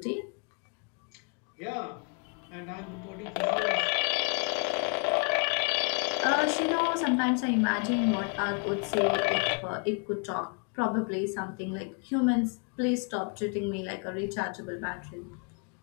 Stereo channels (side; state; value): right; quieter; 36.0 dB